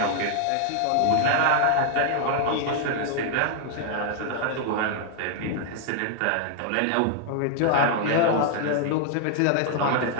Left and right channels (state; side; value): different; both; correlation 0.00